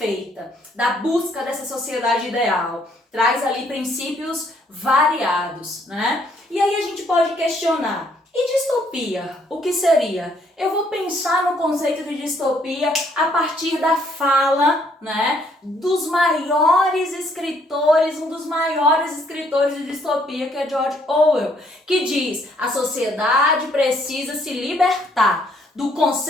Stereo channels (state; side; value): normal; both; correlation 0.67